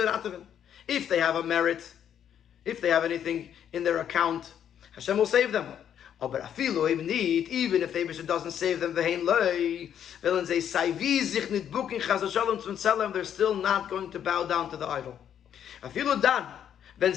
if they have a merit, if they have anything in their account, Hashem will save them. But even if the Eibishter doesn't save them, they're still not going to bow down to the idol.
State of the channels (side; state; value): right; quieter; 9.4 dB